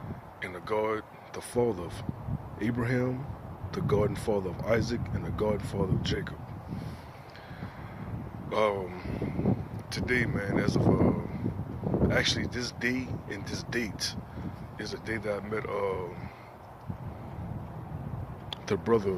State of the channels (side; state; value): both; identical; correlation 1.00